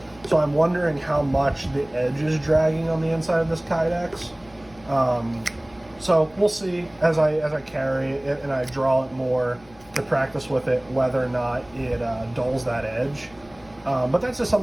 So I'm wondering how much the edge is dragging on the inside of this Kydex. So we'll see as I carry it and I draw it more to practice with it, whether or not it dulls that edge. But that's just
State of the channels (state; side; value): noise; left; hum, 26 dB below the sound